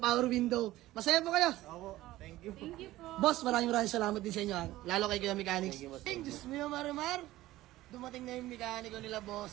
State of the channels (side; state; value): left; quieter; 16.3 dB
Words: window. Masaya po kayo? Opo, thank you. Thank you po. Boss, maraming salamat din sa inyo. Lalo kay Kuya Mechanics. Diyos mo yung Marimar. Dumating na yung mekaniko nila,